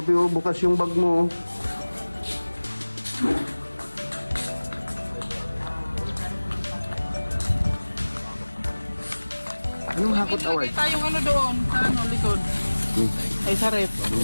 oh, bukas yung bag mo. Anong hakot award? Nakita yung doon, sa likod. Ay, sa ref.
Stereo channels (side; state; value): both; inverted; correlation -1.00